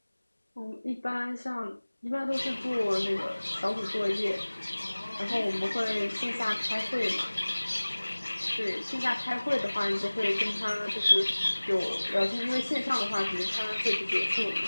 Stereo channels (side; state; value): both; inverted; correlation -1.00